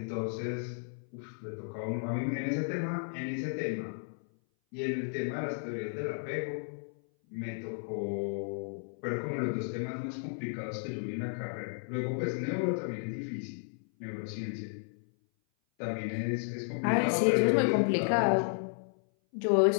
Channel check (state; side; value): silent; right; 56 dB below the other